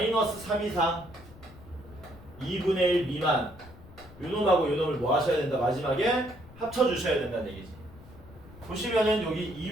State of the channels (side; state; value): left; noise; rumble, 20 dB below the sound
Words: 3 이상 2분의 1 미만 요놈하고 요놈을 뭐 하셔야 된다? 마지막에 합쳐주셔야 된다는 얘기지. 보시면은 여기